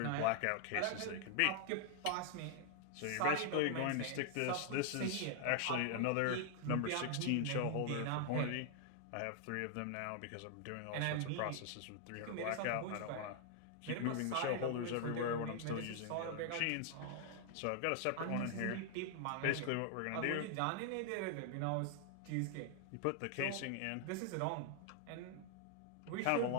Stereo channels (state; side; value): different; both; correlation 0.00